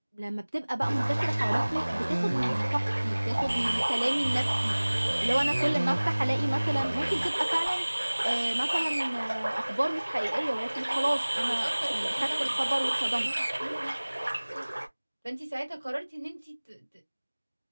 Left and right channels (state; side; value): inverted; both; correlation -1.00